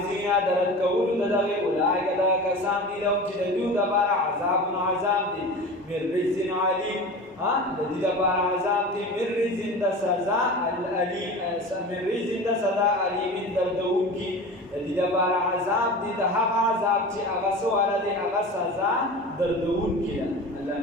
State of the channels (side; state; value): both; normal; correlation 0.33